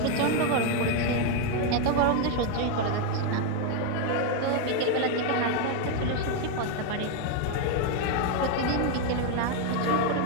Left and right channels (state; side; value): different; both; correlation 0.01